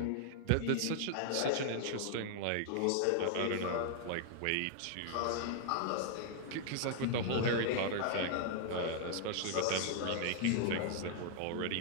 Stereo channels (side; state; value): both; different; correlation 0.00